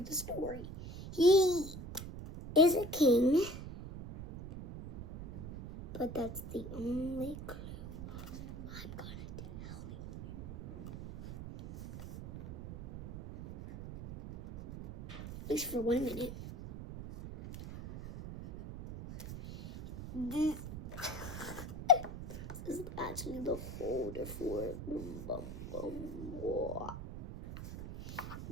the story. He is a king, but that's the only clue I'm gonna tell you. At least for 1 minute. This is actually the holder for it. Boom, boom, boom. Whoa.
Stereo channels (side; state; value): right; noise; rumble, 10 dB below the sound